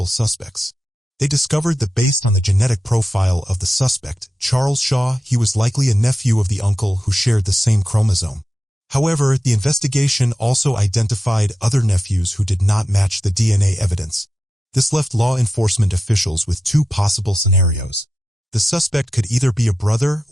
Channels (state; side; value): normal; both; correlation 0.91